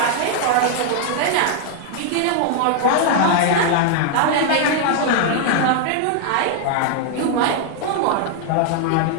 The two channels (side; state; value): both; different; correlation 0.00